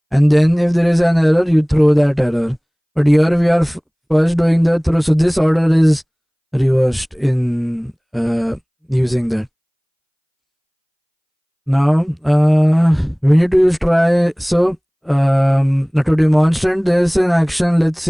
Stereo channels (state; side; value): identical; both; correlation 1.00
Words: and then if there is an error you throw that error. But here we are first doing the throw, so this order is reversed in using that. Now we need to use try. So now to demonstrate this in action, let's